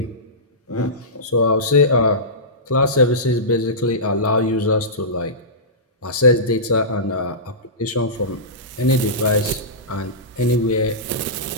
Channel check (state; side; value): normal; both; correlation -0.20